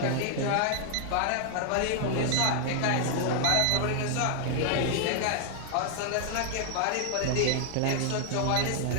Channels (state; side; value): different; both; correlation 0.00